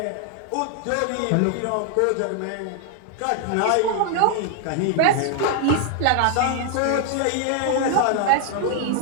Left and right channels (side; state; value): both; different; correlation 0.00